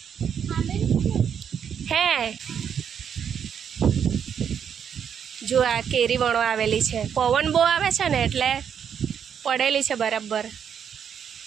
હે જો આ કેરી વણવા આવેલી છે. પવન બહુ આવે છે ને એટલે પડેલી છે બરાબર.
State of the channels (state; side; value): quieter; left; 8.0 dB